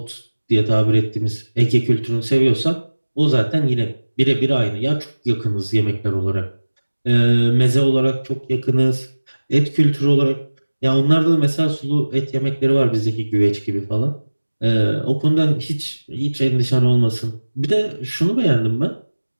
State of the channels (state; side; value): inverted; both; correlation -1.00